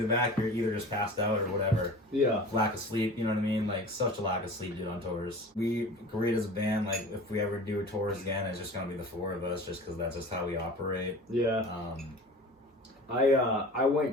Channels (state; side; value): normal; both; correlation 0.39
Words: the back, you're either just passed out or whatever. Yeah. Lack of sleep, you know what I mean? Like, such a lack of sleep, dude, on tours. We agreed as a band, like, if we ever do tours again, it's just gonna be the four of us, just because that's just how we operate. Yeah. I went